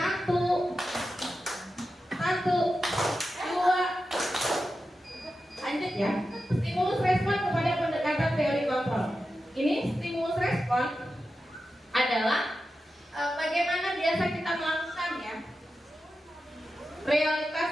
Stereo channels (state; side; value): normal; both; correlation 0.91